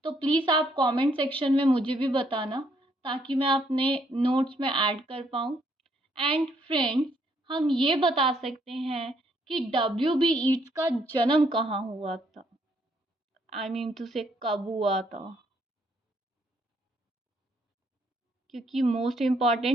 तो प्लीज़ आप कमेंट सेक्शन में मुझे भी बताना ताकि मैं अपने नोट्स में ऐड कर पाऊँ। एंड फ्रेंड्स, हम ये बता सकते हैं कि W.B. ईट्स का जन्म कहाँ हुआ था, आई मीन टू से कब हुआ था, क्योंकि मोस्ट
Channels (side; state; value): both; normal; correlation 0.70